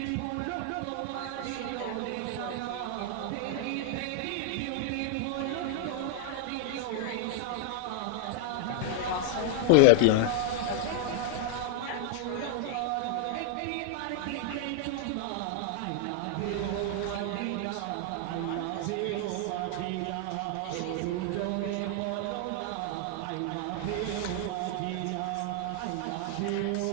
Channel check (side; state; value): both; different; correlation 0.00